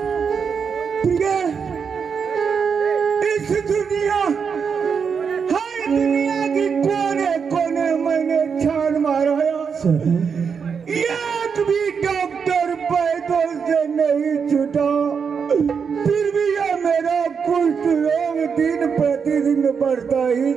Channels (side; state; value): left; quieter; 6.2 dB